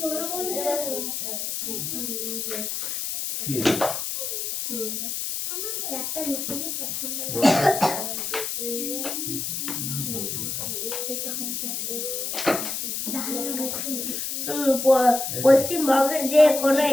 কি একটা লিখতে কি পছন্দ পশ্চিমবঙ্গের যে কোনো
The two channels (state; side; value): noise; left; hiss, 3 dB below the sound